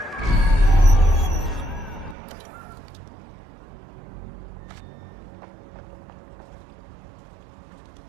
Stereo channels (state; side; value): drops out; left; at 2.1 s